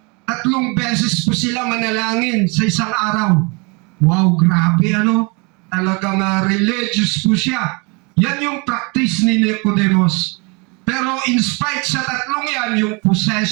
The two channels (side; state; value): left; quieter; 30.1 dB